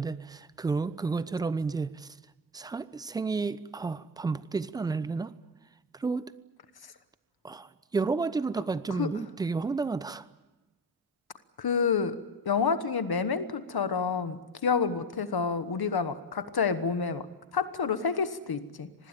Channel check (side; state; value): both; normal; correlation 0.17